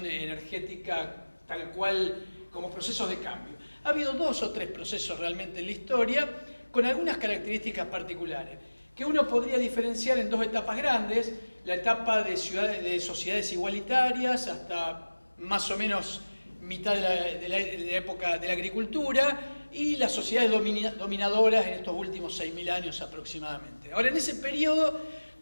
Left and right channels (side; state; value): both; inverted; correlation -1.00